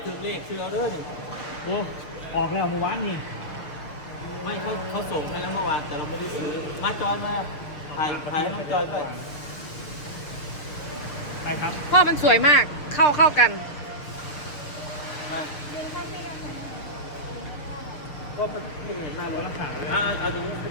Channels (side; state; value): right; late; 6.6 ms